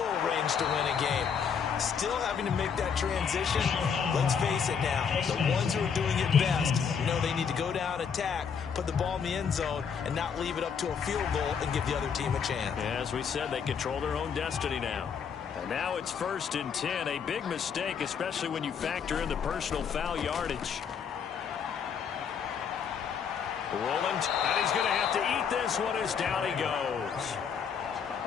range to win a game. Still having to make that transition. Let's face it now, the ones who are doing it best know they need to go down, attack, put the ball in the end zone, and not leave it up to a field goal and give the other team a chance. Yeah, as we said, they control their own destiny now. And now it's 1st and 10. A big mistake, especially when you factor in the personal foul yardage. Roland, and he's going to have to eat this one as down he goes.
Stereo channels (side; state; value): right; quieter; 6.8 dB